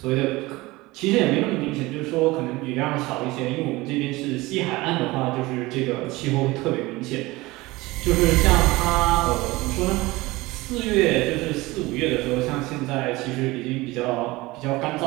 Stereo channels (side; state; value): left; quieter; 20.8 dB